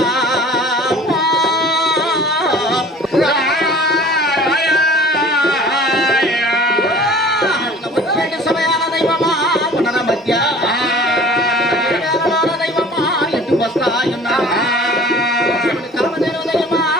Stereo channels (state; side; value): normal; both; correlation 0.47